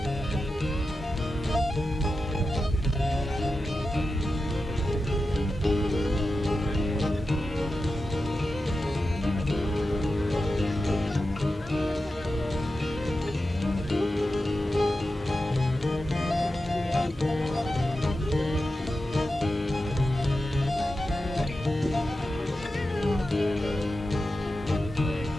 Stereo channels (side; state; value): both; normal; correlation 0.91